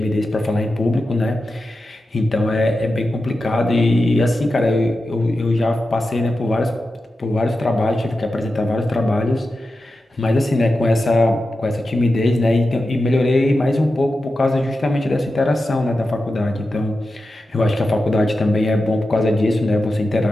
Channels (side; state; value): both; normal; correlation 0.91